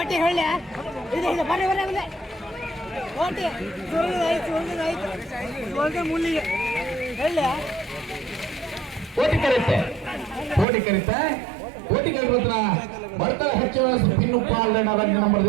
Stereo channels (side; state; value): left; drops out; at 10.7 s